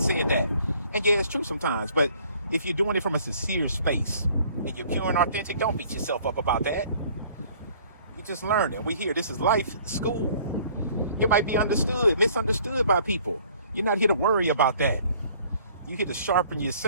said that. And yeah, it's true sometimes. But if you're doing it from a sincere space and you're pure and authentic, don't beat yourself up about that. You're just learning. We here. This is life school. You might be misunderstood by people. You're not here to worry about that. You're here to sharpen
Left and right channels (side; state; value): both; inverted; correlation -0.56